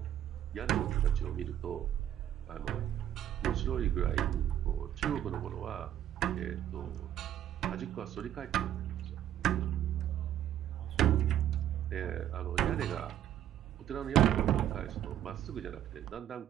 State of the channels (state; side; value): quieter; left; 11.2 dB